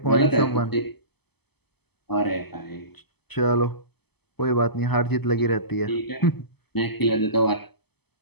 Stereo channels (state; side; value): late; right; 0.97 ms